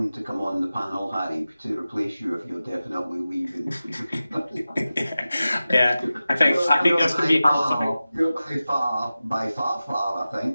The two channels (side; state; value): both; inverted; correlation -0.95